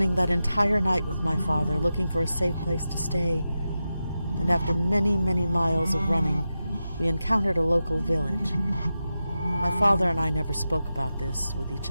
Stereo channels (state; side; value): inverted; both; correlation -0.91